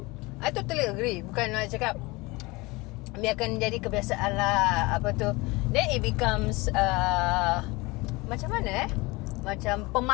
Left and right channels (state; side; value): quieter; right; 23.7 dB